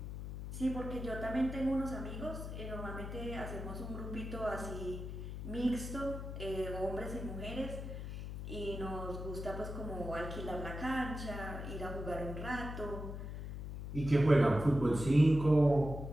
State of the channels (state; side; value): noise; left; hum, 7 dB below the sound